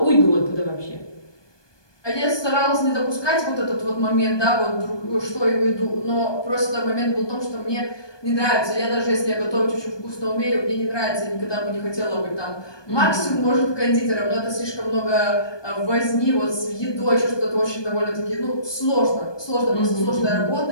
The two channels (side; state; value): right; late; 1.2 ms